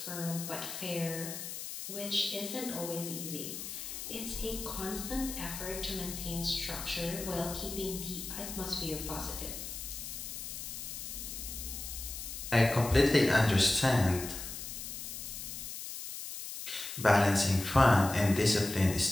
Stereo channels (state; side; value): noise; left; hiss, 8 dB below the sound